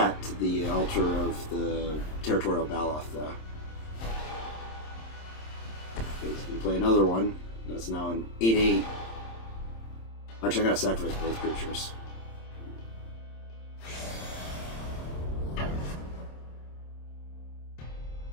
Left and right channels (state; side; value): late; right; 26 ms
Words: to the altar of the Territorial Baloth, though. He's gonna play another one. That's now an 8/8. Actually, I gotta sacrifice both creatures.